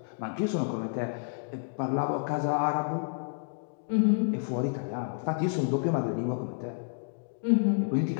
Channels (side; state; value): right; silent; digital silence